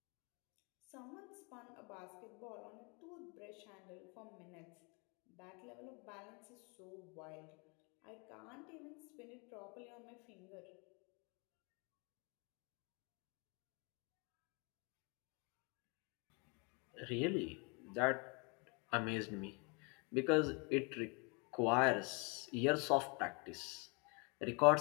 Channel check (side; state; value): right; quieter; 32.1 dB